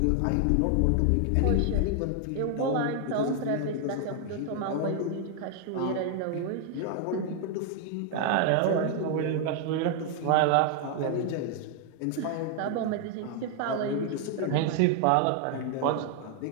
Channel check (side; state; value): both; different; correlation 0.00